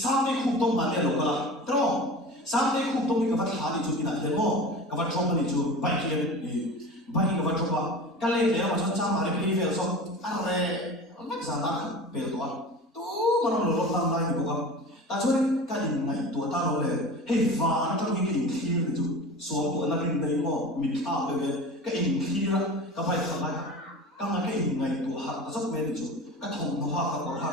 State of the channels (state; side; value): normal; both; correlation 0.34